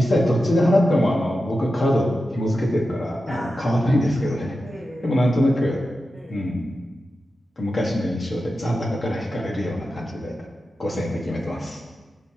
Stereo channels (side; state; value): both; normal; correlation 0.91